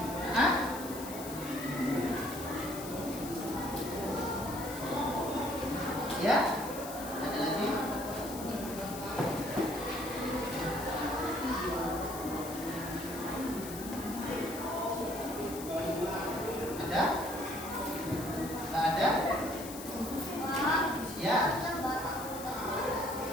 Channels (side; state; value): left; noise; hiss, 11 dB below the sound